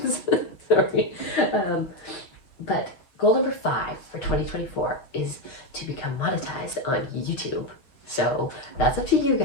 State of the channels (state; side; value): late; right; 6.8 ms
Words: Sorry. But goal number 5 for 2024 is to become monetized on YouTube. So that's up to you